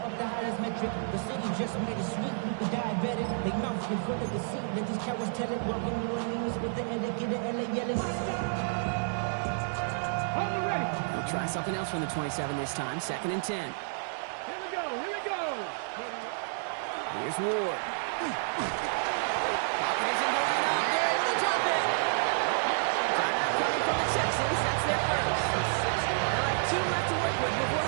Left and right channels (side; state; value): left; silent; digital silence